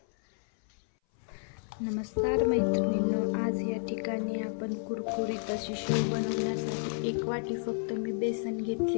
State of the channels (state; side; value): silent; right; 57 dB below the other